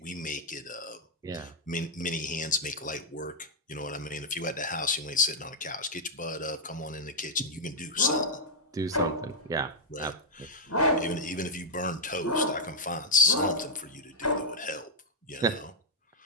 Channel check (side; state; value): both; normal; correlation -0.06